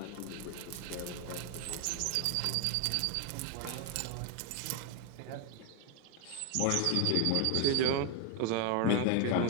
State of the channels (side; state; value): both; different; correlation 0.01